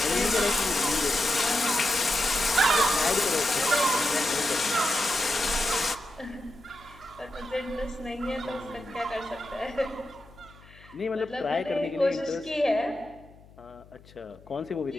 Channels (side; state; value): left; noise; hum, 24 dB below the sound